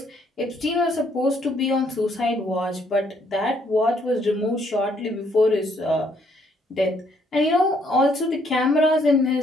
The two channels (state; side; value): normal; both; correlation 0.68